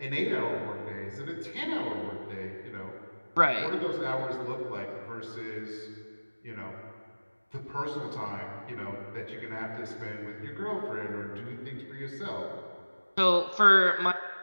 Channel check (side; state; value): both; inverted; correlation -1.00